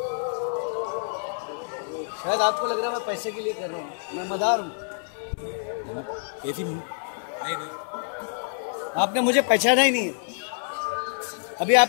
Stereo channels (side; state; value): right; silent; 60 dB below the other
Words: शायद आपको लग रहा है मैं पैसे के लिए कर रहा हूँ, मैं मदार हूँ। आपने मुझे पहचाना ही नहीं है। अभी